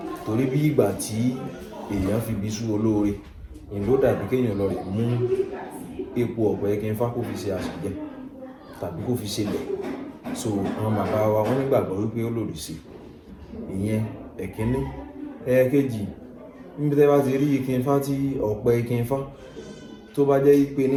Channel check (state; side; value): identical; both; correlation 1.00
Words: torí bí ìgbà tí èèyàn fi bí sú olóore, ìlú dàbí kéèyàn lọ rẹ̀ mú epo ọ̀pẹ ìkìn Ifá kó fi ṣe àṣìjẹ tàbí kó fi ṣe lẹ̀. So àwọn bàbá wa wọ́n nígbàgbọ́ wípé ó lòdì sí ìyẹn ẹ̀kíní. Ẹ̀ẹ̀kejì, níbi tẹ́ bá ti rí ìkìn Ifá tí ọ̀pẹ ìkìn Ifá tó bá jẹ́ wípé ní